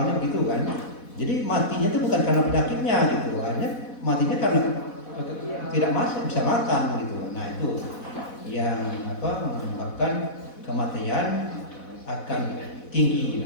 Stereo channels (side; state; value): right; late; 4.1 ms